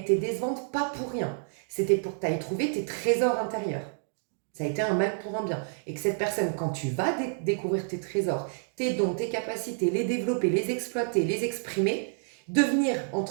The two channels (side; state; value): left; silent; 59 dB below the other